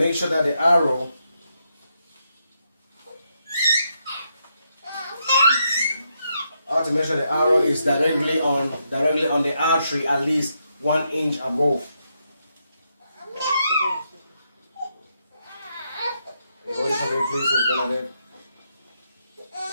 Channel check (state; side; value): inverted; both; correlation -0.81